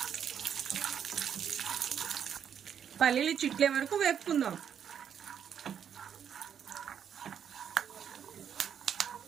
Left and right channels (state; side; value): quieter; left; 8.3 dB